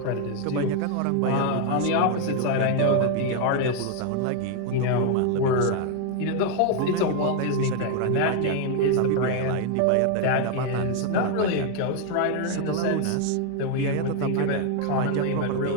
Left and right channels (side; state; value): both; different; correlation 0.01